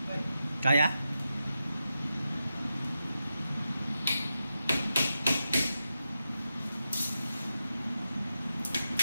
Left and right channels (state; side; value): inverted; both; correlation -0.89